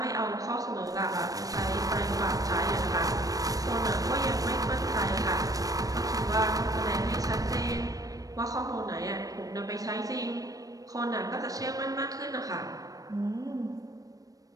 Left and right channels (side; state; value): left; late; 0.17 ms